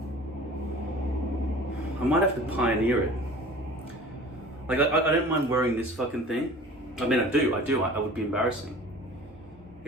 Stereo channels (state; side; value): normal; both; correlation 0.43